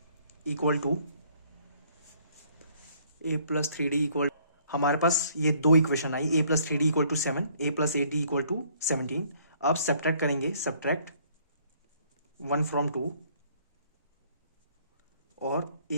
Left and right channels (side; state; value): both; inverted; correlation -0.62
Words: equal to हमारे पास ये 2 इक्वेशन आई, a plus 3d equal to 7, a plus 8d equal to 17। अब सब्ट्रैक्ट करेंगे, सब्ट्रैक्ट 1 फ्रॉम 2, और